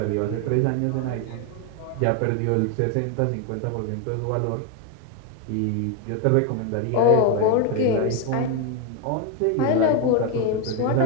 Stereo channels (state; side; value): different; both; correlation 0.01